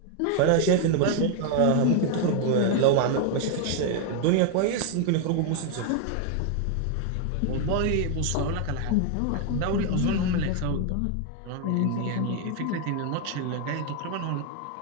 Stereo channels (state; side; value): different; both; correlation 0.01